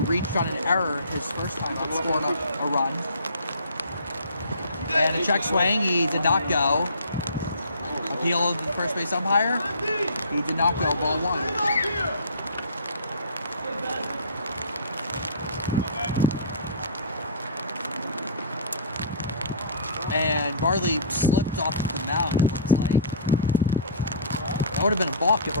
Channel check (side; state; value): both; inverted; correlation -0.43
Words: reached on an error his first time up, scored a run. And a check swing, he did not go. Appeal to the first base umpire, he did not go, ball 1. And Bartley slipped off the mound, it looks like. That would have been a balk if a